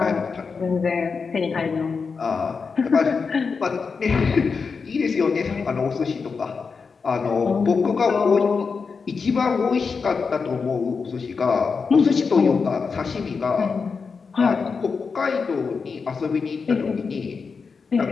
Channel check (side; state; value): right; quieter; 5.2 dB